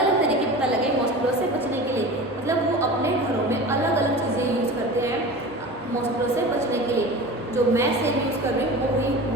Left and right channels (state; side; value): normal; both; correlation 0.34